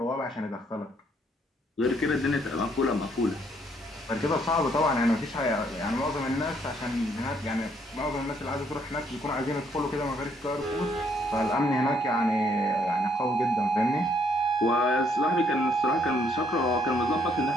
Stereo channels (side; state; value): both; normal; correlation 0.69